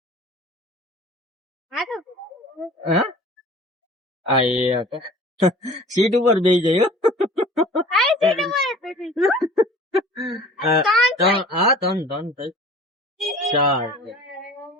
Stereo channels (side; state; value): both; normal; correlation 0.45